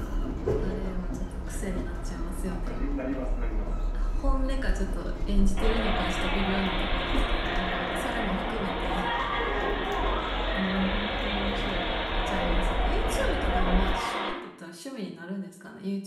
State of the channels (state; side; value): identical; both; correlation 1.00